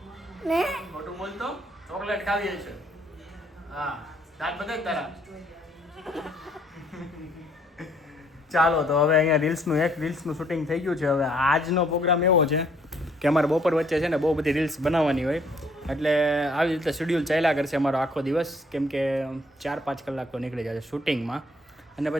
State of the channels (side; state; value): both; normal; correlation 0.64